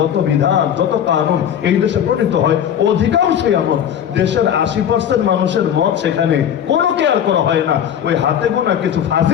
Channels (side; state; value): right; quieter; 9.3 dB